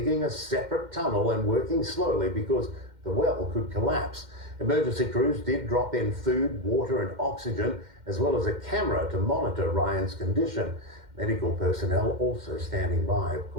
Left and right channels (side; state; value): left; late; 2.1 ms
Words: a separate tunnel and working slowly because the well could collapse. Emergency crews did drop in food, water and oxygen, as well as a camera to monitor Ryan's condition. Medical personnel also standing by, of